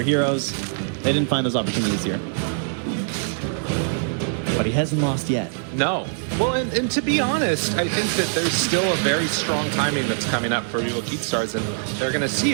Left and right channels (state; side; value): silent; left; digital silence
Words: heroes. They didn't find those opportunities here. But he hasn't lost yet. No. Well, and to be honest, I think that there's still a very strong timing that's coming up for Vivo Keystars, and they're going to